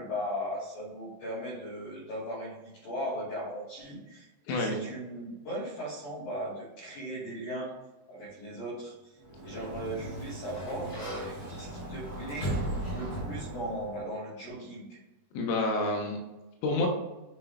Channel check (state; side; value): late; right; 21 ms